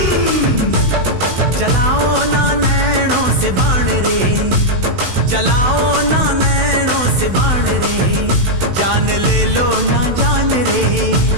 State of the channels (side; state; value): left; late; 16 ms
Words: चलाओ ना नैनों से बाण रे, चलाओ ना नैनों से बाण रे। जान ले लो ना जान रे,